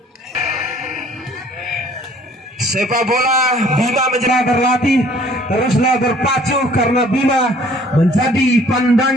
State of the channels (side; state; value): both; normal; correlation 0.56